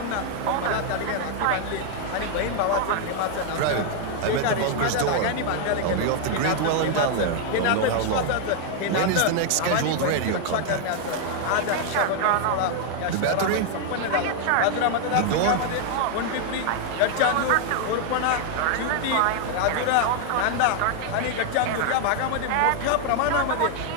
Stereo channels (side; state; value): both; different; correlation 0.00